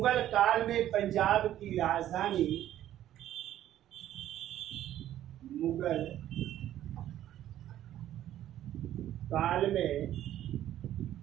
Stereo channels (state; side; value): quieter; left; 12.3 dB